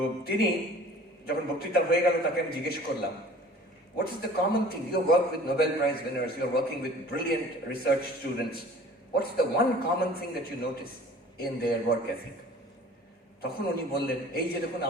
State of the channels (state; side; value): normal; both; correlation 0.47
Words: তিনি যখন বক্তৃতা হয়ে গেল, তাকে আমি জিজ্ঞেস করলাম, what is the common thing? You work with Nobel Prize winners, you are working with brilliant research students. What's the one common thing that you notice in their work ethic? তখন উনি বললেন, এই যে দেখুন